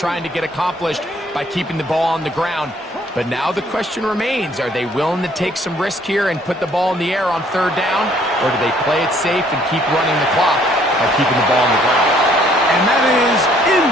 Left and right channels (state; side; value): normal; both; correlation 0.62